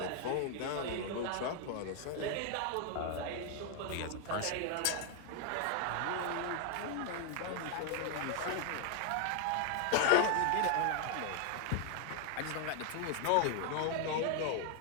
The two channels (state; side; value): different; both; correlation 0.00